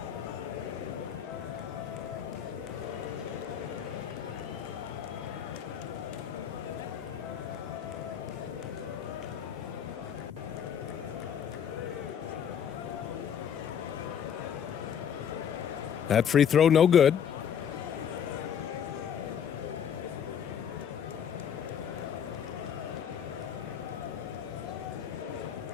That free throw no good.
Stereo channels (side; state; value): right; quieter; 8.4 dB